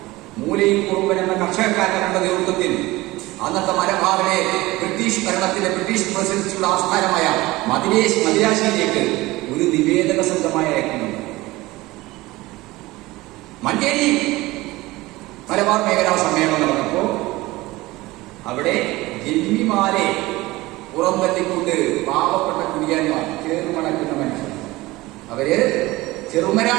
മൂലയിൽ കുറുമ്പൻ എന്ന കർഷകക്കാരന്റെ നേതൃത്വത്തിൽ അന്നത്തെ മലബാറിലെ ബ്രിട്ടീഷ് ഭരണത്തിന്റെ, ബ്രിട്ടീഷ് പ്രസിഡൻസിയുടെ ആസ്ഥാനമായ മദിരാശിയിലേക്ക് ഒരു നിവേദക സംഘമായി അയക്കുന്നു. മഞ്ചേരി മലബാർ മേഖലാ സമ്മേളനം നടന്നപ്പോൾ അവിടെ ജന്മിമാരെ പുറംതള്ളിക്കൊണ്ട് പാവപ്പെട്ട കുടിയാന്മാർ, ചേർമണക്കുന്ന മനുഷ്യർ, അവര്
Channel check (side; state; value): left; quieter; 19.8 dB